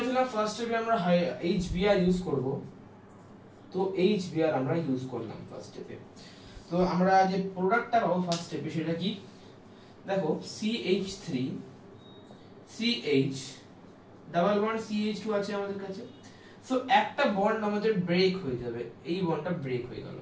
ফার্স্ট স্টেপে আমরা HBr ইউজ করব, তো HBr আমরা ইউজ করলাম ফার্স্ট স্টেপে। তো আমরা যে প্রোডাক্টটা পাবো ফার্স্ট স্টেপে সেটা কি, দেখো CH3 CH double bond CH2 আছে আমাদের কাছে। সো একটা বন্ড আমাদের ব্রেক হয়ে যাবে, এই বন্ডটা ব্রেক হয়ে গেল,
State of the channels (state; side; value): identical; both; correlation 1.00